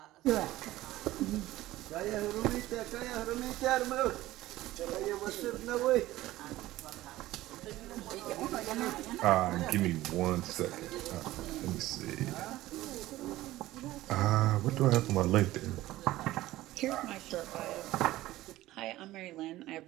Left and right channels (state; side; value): quieter; left; 16.4 dB